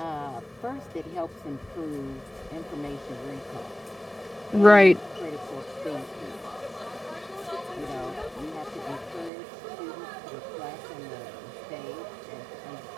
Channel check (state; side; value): drops out; left; at 9.3 s